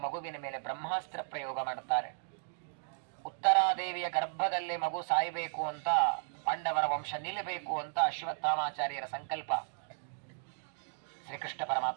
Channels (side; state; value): left; silent; digital silence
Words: ಮಗುವಿನ ಮೇಲೆ ಬ್ರಹ್ಮಾಸ್ತ್ರ ಪ್ರಯೋಗ ಮಾಡುತ್ತಾರೆ. ಉತ್ತರಾದೇವಿಯ ಗರ್ಭದಲ್ಲಿ ಮಗು ಸಾಯಬೇಕು ಅಂತ, ಪಾಂಡವರ ವಂಶ ನಿಲ್ಲಬೇಕು ಅಂತ ಅಶ್ವತ್ಥಾಮಾಚಾರ್ಯರ ಸಂಕಲ್ಪ. ಶ್ರೀಕೃಷ್ಣ